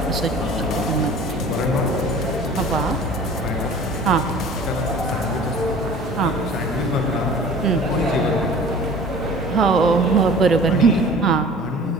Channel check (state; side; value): normal; both; correlation 0.44